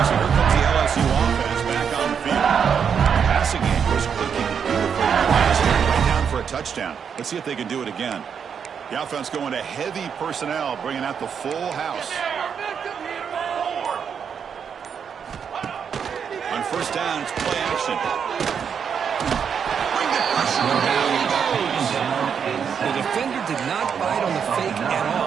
so here comes the LSU offense back on the field. Passing game was clicking beautifully last year, right down for a touchdown. Let's see if they can do it again. The offense going to heavy personnel, bringing out the full house. On first down, it's play action. Bring the pressure down. He goes. The defender did not bite on the fake at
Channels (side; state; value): left; quieter; 7.2 dB